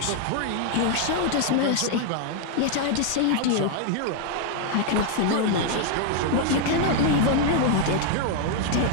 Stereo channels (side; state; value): both; different; correlation 0.00